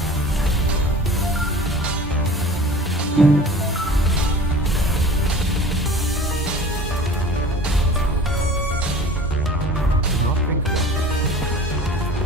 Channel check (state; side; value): normal; both; correlation 0.42